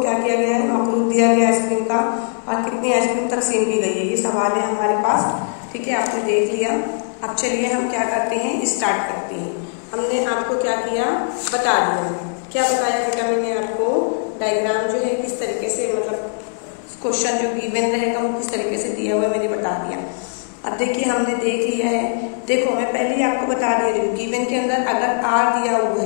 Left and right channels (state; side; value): silent; right; 58 dB below the other